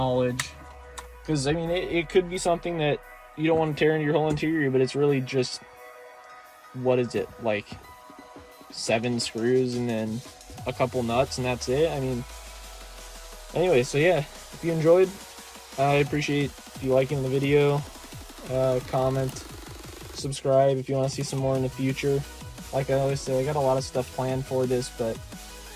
Because I mean, it could be something that you don't want to tear into your whole interior, but it's really just, what is it, like 7 screws and then a couple nuts, and that's it. I mean, anyway, so yeah, if you enjoyed, I appreciate you liking the video, comment, subscribe if you want to see some more in the future. Like I always say, I got a lot of stuff planned for this, but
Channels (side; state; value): both; identical; correlation 1.00